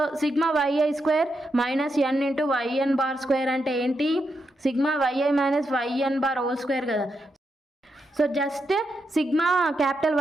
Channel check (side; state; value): both; normal; correlation 0.83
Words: sigma yi² minus n into yn² అంటే ఏంటి, sigma yi minus yn² whole square కదా. So just sigma capital